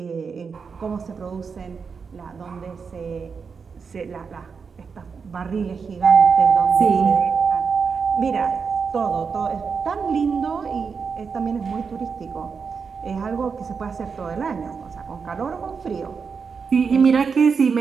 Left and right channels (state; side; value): quieter; left; 5.6 dB